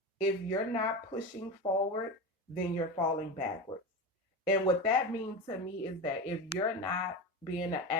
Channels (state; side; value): normal; both; correlation 0.23